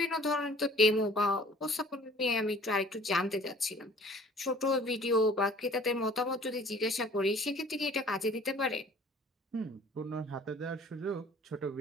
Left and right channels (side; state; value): both; normal; correlation 0.51